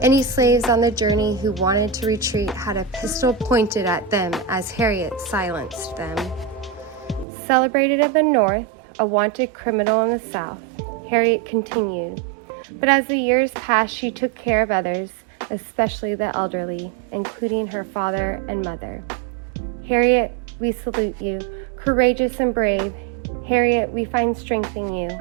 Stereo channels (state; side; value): drops out; left; at 7.2 s